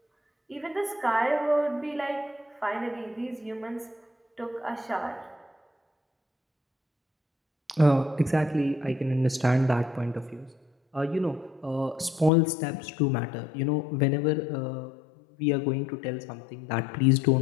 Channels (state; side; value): drops out; right; at 12.3 s